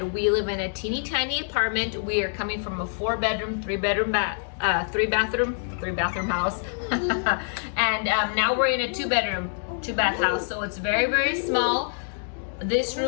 we live in a teeny tiny apartment. We are coming from a 4-bedroom, 3-bathroom house. And now we're in a 2-bedroom, 2-bath house. So it's very small. This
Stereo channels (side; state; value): right; silent; digital silence